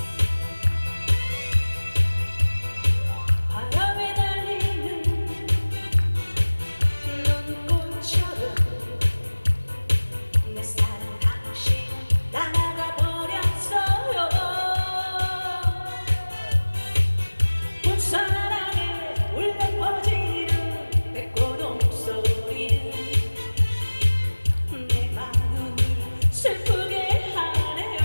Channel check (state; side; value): inverted; both; correlation -1.00